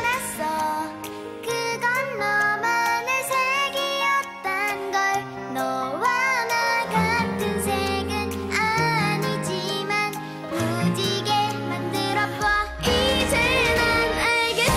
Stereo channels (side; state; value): both; identical; correlation 1.00